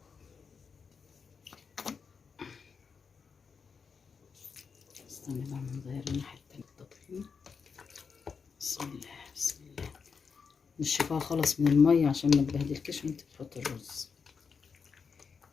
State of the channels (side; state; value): right; quieter; 5.7 dB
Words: استنى بقى نغير الناحية التانية التطحين. بسم الله بسم الله. نشفها خالص من المية عشان ما تبهدلكش وانت بتحط الرز.